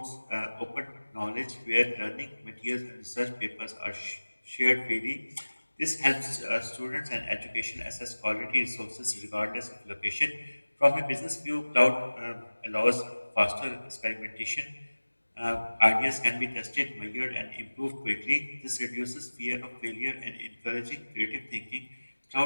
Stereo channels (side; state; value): both; inverted; correlation -1.00